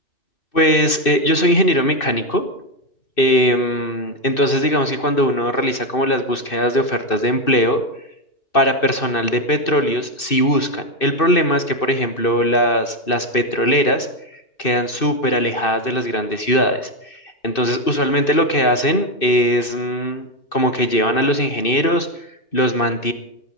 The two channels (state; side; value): late; right; 2.6 ms